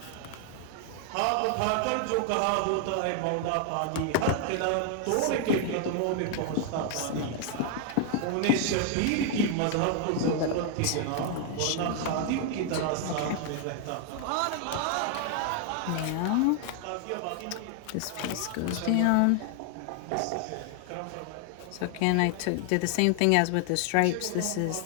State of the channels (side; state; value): both; different; correlation 0.00